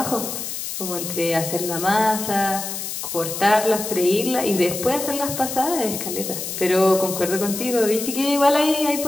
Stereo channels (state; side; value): noise; left; hiss, 6 dB below the sound